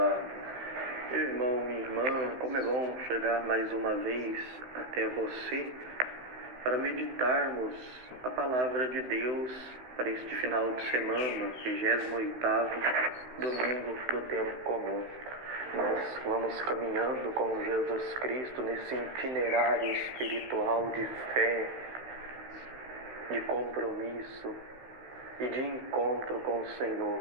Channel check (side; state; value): left; late; 16 ms